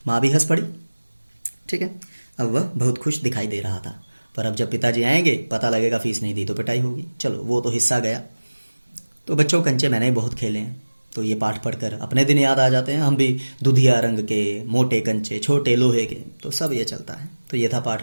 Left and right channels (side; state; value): both; inverted; correlation -1.00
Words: माँ भी हंस पड़ी। ठीक है, अब वह बहुत खुश दिखाई दे रहा था। पर अब जब पिताजी आएंगे, पता लगेगा फीस नहीं दी तो पिटाई होगी। चलो, वो तो हिस्सा गया। तो बच्चों, कंचे मैंने बहुत खेले हैं, तो ये पाठ पढ़कर अपने दिन याद आ जाते हैं। हम भी दुधिया रंग के, मोटे कंचे, छोटे लोहे के, तो सब ये चलता है। तो ये था